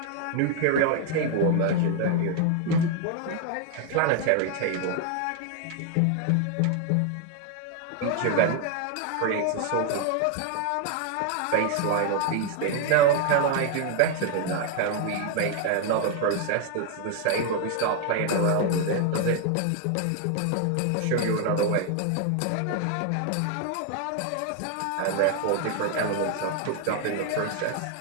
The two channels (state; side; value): different; both; correlation 0.01